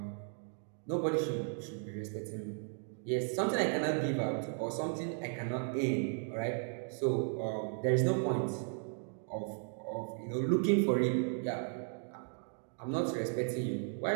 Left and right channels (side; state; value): left; silent; 54 dB below the other